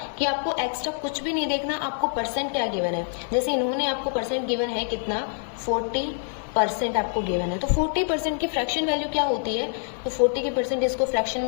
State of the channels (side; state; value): right; silent; 61 dB below the other